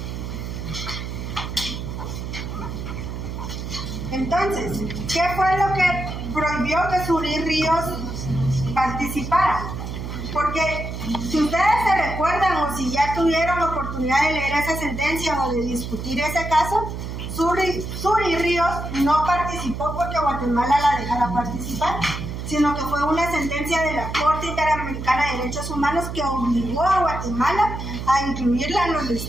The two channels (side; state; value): right; noise; hum, 6 dB below the sound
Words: Entonces, ¿qué fue lo que prohibió que Zuri Ríos participara? Porque si ustedes se recuerdan o si ya tuvieron la oportunidad de leer esa sentencia o de discutir ese caso, Zuri Ríos no participó porque Guatemala la dejara participar, sino que fue una sentencia de la Corte Interamericana de Derechos Humanos que obligó a Guatemala a incluirla en los